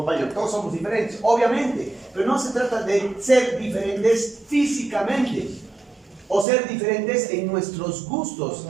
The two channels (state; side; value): drops out; left; at 6.5 s